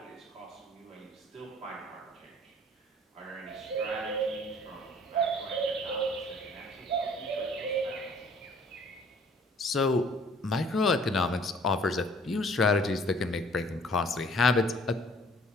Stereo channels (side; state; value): both; normal; correlation 0.55